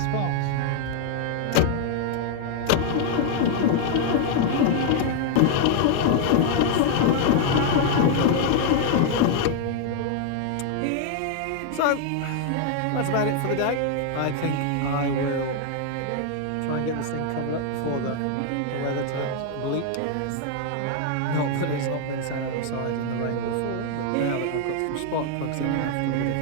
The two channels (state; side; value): different; both; correlation 0.00